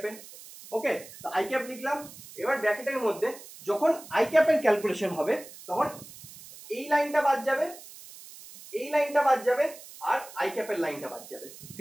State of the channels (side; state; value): right; noise; hiss, 17 dB below the sound